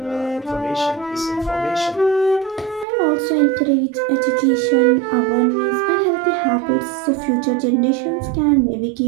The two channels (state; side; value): drops out; left; at 2.9 s